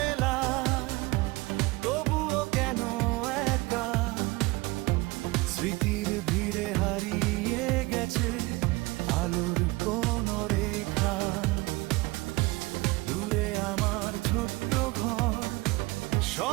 তবুও কেন একা, স্মৃতির ভিড়ে হারিয়ে গেছে আলোর কোন রেখা। দূরে আমার ছোট্ট ঘর,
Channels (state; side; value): quieter; left; 22.6 dB